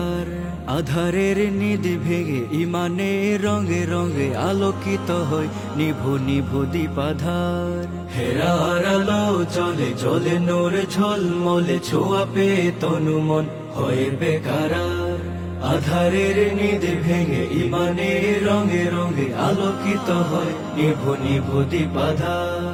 আধারের নিধি ভেঙে ইমানে রঙে রঙে আলোকিত হয় নিভু নিভু দীপাধার। হেরার আলো জলে জলে নূর ঝলমলে ছোঁয়া পে তনু মন হয়ে বেকারার। আধারের নিধি ভেঙে ইমানে রঙে রঙে আলোকিত হয় নিভু নিভু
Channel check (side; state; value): both; identical; correlation 1.00